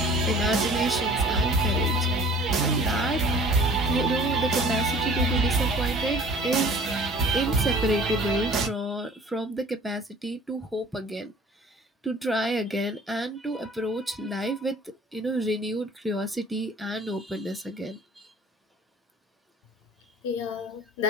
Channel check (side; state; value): both; normal; correlation 0.48